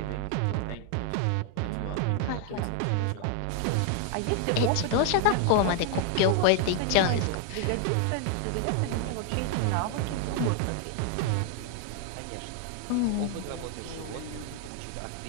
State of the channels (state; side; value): different; both; correlation 0.00